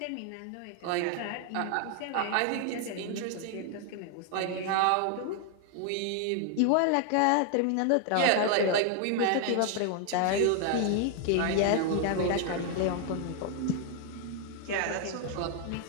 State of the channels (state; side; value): different; both; correlation 0.00